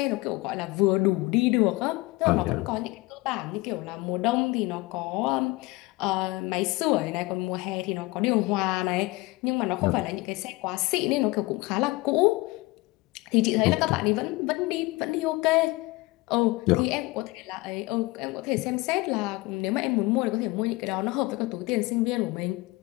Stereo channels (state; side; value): quieter; right; 21.9 dB